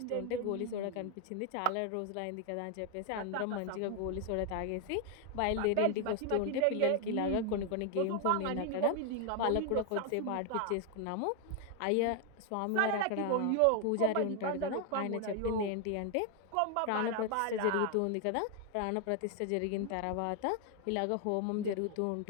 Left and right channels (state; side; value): different; both; correlation 0.01